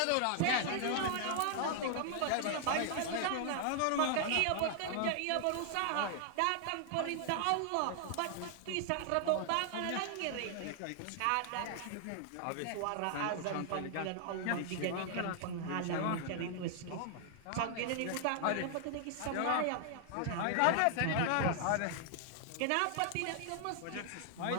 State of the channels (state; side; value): different; both; correlation 0.00